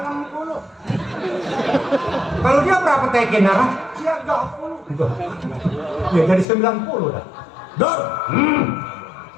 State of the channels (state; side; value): drops out; right; at 6.5 s